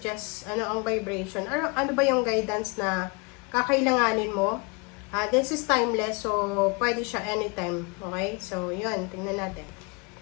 ano ang vibration, ano ba yung guidance na kakailanganin mo. This is timeless, so pwede siya anytime. Okay? So, yun. Tingnan natin.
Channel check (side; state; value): right; quieter; 30.8 dB